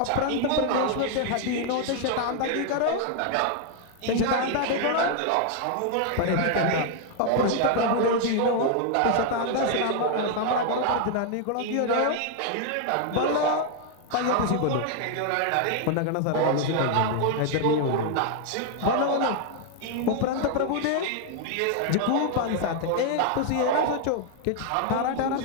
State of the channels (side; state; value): both; different; correlation 0.00